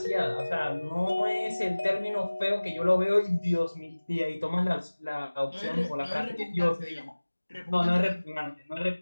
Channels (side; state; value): both; inverted; correlation -1.00